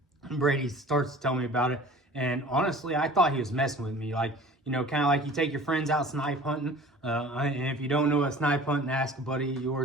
Brady starts to tell me about it, and honestly, I thought he was messing with me. Like, you know, kind of like you take your friends out snipe hunting. And if you don't know what snipe hunting, ask a buddy of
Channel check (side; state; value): both; normal; correlation 0.44